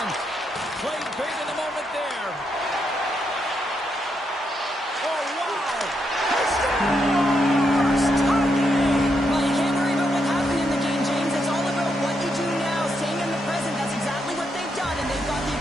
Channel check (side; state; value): both; normal; correlation 0.80